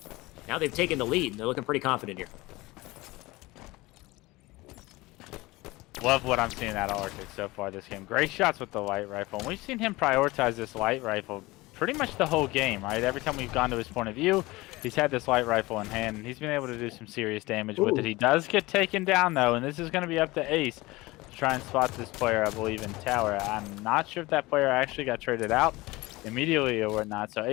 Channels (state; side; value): quieter; right; 21.0 dB